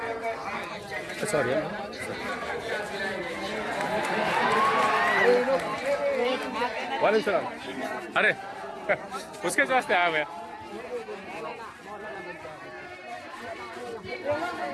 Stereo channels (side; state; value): both; identical; correlation 1.00